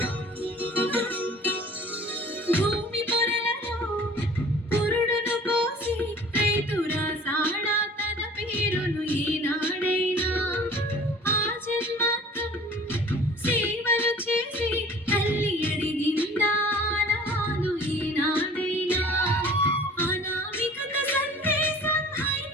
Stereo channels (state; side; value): normal; both; correlation 0.47